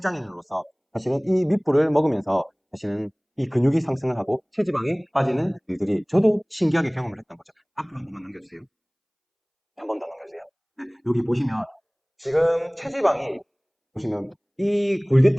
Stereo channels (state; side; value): identical; both; correlation 1.00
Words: 사실은 이 밑불을 먹으면서 사실은 이 근육이 상승을 하고 체지방이 빠지는 일들이 저도 신기하게 경험을 했던 거죠. 앞으로 한 번만 넘겨주세요. 한 번 더 넘겨주세요. 여기 보시면 지금 체지방이 보시면 이